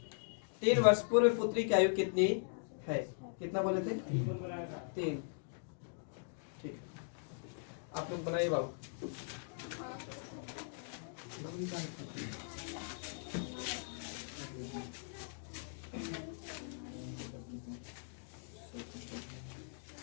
3 वर्ष पूर्व पुत्री की आयु कितनी है, कितना बोले थे, 3। ठीक, आप लोग बनाइए बाबू।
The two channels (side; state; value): right; silent; digital silence